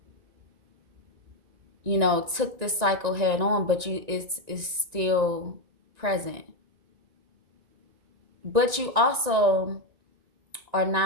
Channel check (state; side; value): late; left; 1.9 ms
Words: you know, took this cycle head on, but it's still present. But you also are